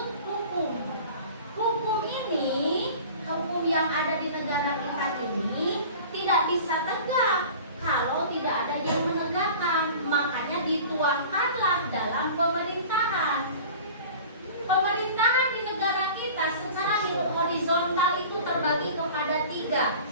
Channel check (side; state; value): both; inverted; correlation -0.41